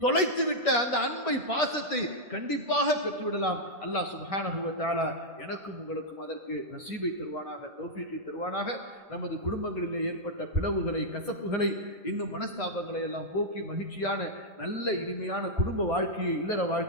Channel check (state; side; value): late; left; 1.6 ms